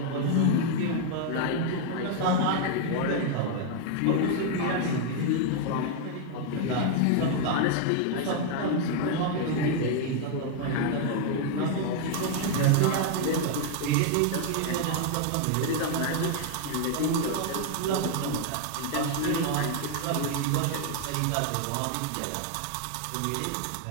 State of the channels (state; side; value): different; both; correlation 0.00